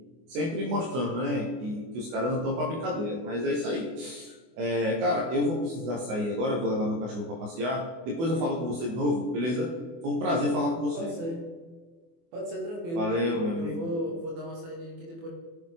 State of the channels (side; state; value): left; late; 24 ms